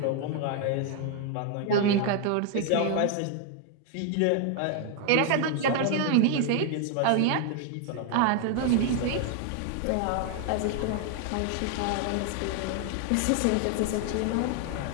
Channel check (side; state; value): both; different; correlation 0.00